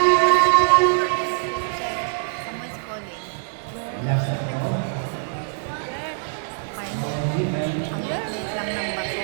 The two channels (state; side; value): silent; left; digital silence